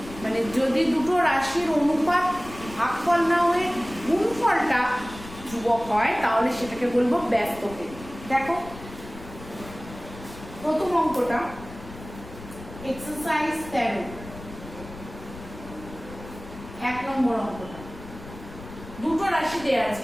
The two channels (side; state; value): left; noise; rumble, 15 dB below the sound